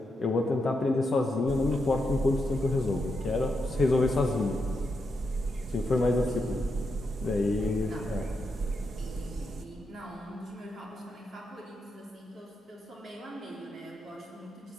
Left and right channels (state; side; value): normal; both; correlation 0.84